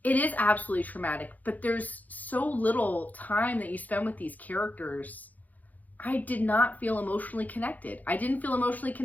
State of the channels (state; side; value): late; right; 0.080 ms